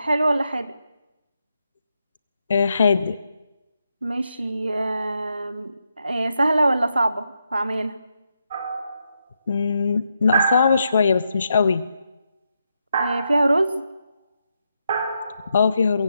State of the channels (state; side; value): inverted; both; correlation -0.82